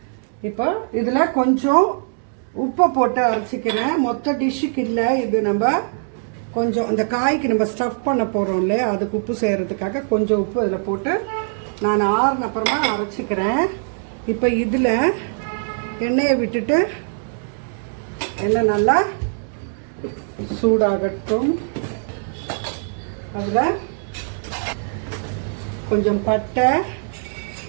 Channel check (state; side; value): silent; left; 65 dB below the other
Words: இப்போ இதில் கொஞ்சம் உப்பை போட்டு அரைச்சிக்கிறேன். மொத்த டிஷ்ஷுக்கு இல்லை, இது நம்ம கொஞ்சம் அந்த காய்க்கு நம்ம ஸ்டஃப் பண்ண போகிறோம் இல்லையா, அதுக்கு உப்பு செய்கிறதுக்காக கொஞ்சம் உப்பு இதில் போட்டு நான் ஆறுன அப்புறமா அரைச்சிக்கிறேன். இப்போ இதில் எண்ணெயை விட்டுட்டு எண்ணெய் நல்லா சூடாகட்டும். அதில் கொஞ்சம் பட்டை,